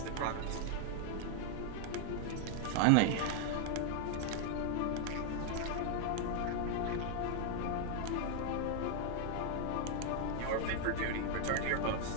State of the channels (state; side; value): different; both; correlation 0.00